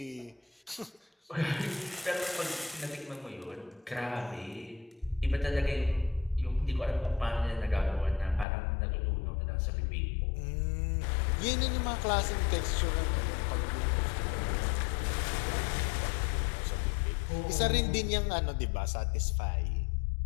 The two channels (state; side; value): drops out; right; at 8.5 s